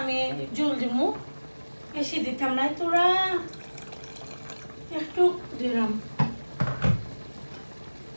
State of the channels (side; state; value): both; inverted; correlation -1.00